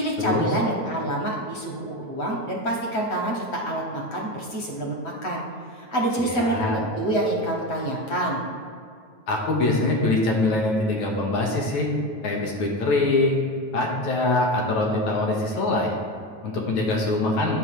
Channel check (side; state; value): right; late; 9.2 ms